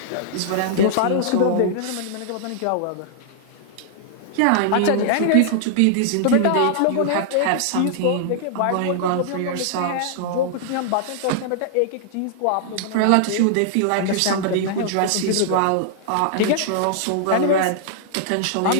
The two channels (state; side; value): different; both; correlation -0.01